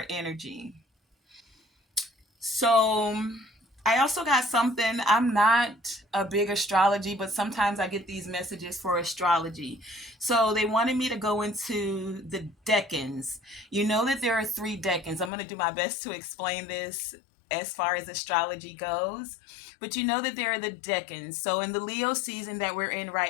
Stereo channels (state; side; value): drops out; right; at 15.3 s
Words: energy. So I also got something. I'm not a big astrology, but sometimes I get these messages for astrology. So they wanted me to go into the decans. You know that there are three decans. I'm going to do my best to explain this as far as astrology goes. But you know that there are the decans. So in the Leo season that we're in